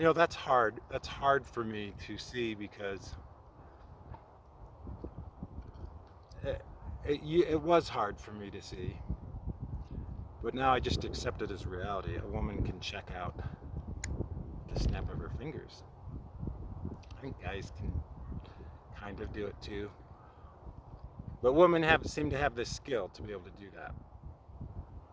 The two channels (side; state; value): both; identical; correlation 1.00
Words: hard. That's hard for me to see because it was hard for me to see. But now I just accept it as reality. A woman can check out the snap of her fingers. I think guys can kind of do it too. But women seem to have this skill to be able to do that.